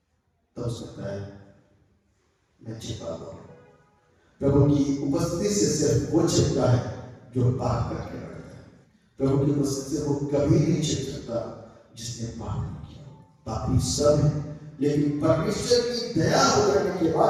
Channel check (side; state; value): both; identical; correlation 1.00